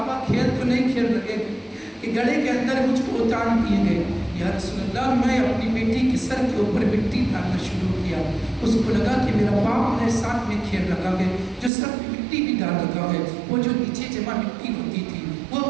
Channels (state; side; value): drops out; left; at 11.7 s